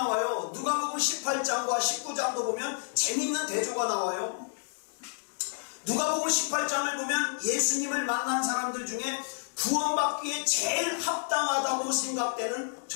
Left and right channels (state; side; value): silent; right; digital silence